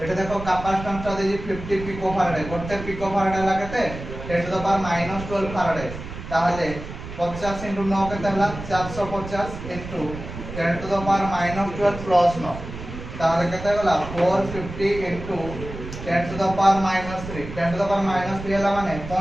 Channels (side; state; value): right; noise; rumble, 10 dB below the sound